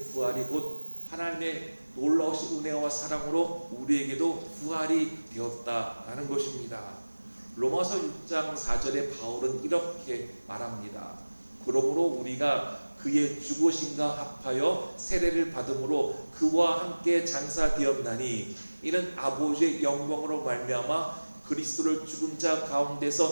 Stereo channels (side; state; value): both; inverted; correlation -1.00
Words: 부활이 곧 하나님의 놀라우신 은혜와 사랑으로 우리에게도 부활이 되었다라는 것입니다. 로마서 6장 4절에 바울은 이렇게 말합니다. 그러므로 우리가 그의 죽으심과 합하여 세례를 받음으로 그와 함께 장사되었나니 이는 아버지의 영광으로 말미암아 그리스도를 죽은 자